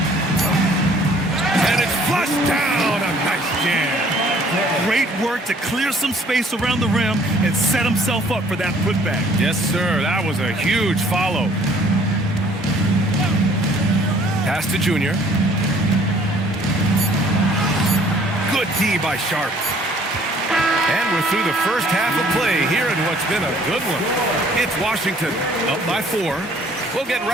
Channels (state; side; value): normal; both; correlation 0.58